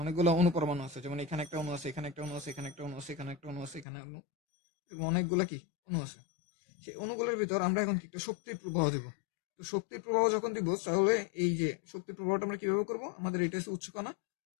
অনেকগুলো অণু পরমাণু আছে, যেমন এখানে একটা অণু আছে, এখানে একটা অণু আছে, এখানে একটা অণু আছে, এখানে একটা অণু আছে, এখানে অণু, এরকম অনেকগুলো কি অণু আছে। সেই অণুগুলোর ভিতর আমরা এখন কি একটা শক্তির প্রবাহ দিব। তো শক্তির প্রবাহ যখন দিব, তাহলে এই যে শক্তির প্রবাহটা আমরা কিভাবে করব, আমাদের এটা হচ্ছে উচ্চকণা,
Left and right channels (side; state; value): right; drops out; at 3.9 s